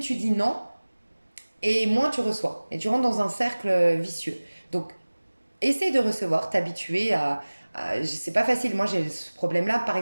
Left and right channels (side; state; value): both; inverted; correlation -1.00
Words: dis non et moins tu reçois. Et tu rentres dans un cercle vicieux. Donc essaye de recevoir, t'habituer c'est pas facile. Moi, j'ai ce problème-là, par